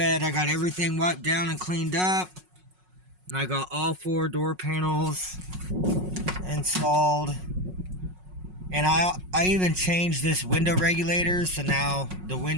I got everything wiped down and cleaned up. And I got all 4 door panels installed. And I even changed this window regulator, so now the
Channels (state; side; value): late; left; 5.5 ms